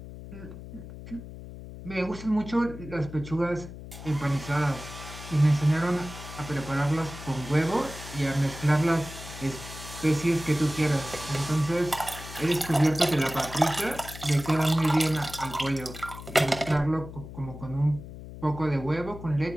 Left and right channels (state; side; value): noise; left; hum, 13 dB below the sound